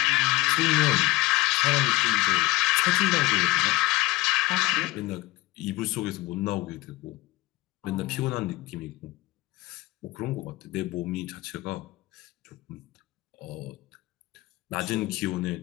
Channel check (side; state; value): right; quieter; 19.7 dB